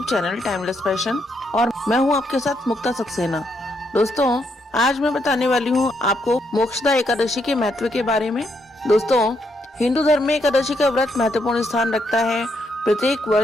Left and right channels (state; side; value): normal; both; correlation 0.77